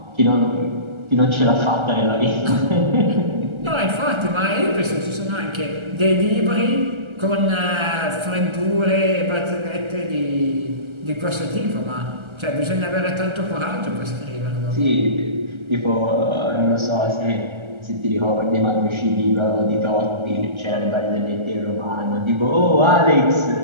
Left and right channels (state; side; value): late; left; 1.3 ms